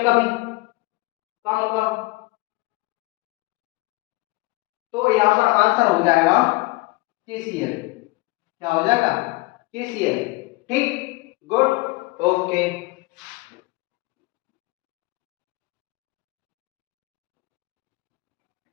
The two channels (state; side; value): quieter; right; 23.5 dB